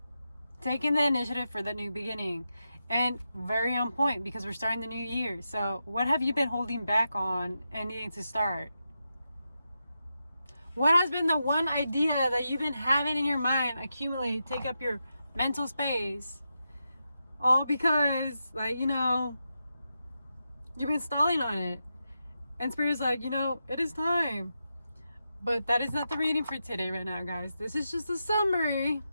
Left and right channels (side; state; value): both; inverted; correlation -0.88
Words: taking the initiative for the new beginning. And very on point because we're starting the new year. So what have you been holding back on and needing to start? What has been the one idea that you've been having in your mind accumulate, take up your mental space? All because, you've been stalling on it. And Spirit's like, it is time. But that is not the reading for today right now, guys. This is just a summary